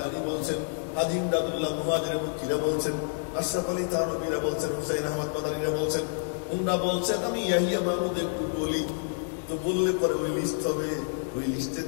বলছেন, হাজী ইমদাদুল্লাহ মুহাজির মুকিরা বলছেন, আশরাফ আলী থানভীরা বলছেন, হুসাইন আহমদ মাদানীরা বলছেন, উনরা বলছেন, আমি ইয়াহিয়া মাহমুদের বলি। তো বললে পরে ওই লিস্ট হবে, ওই লিস্টের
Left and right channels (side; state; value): right; silent; digital silence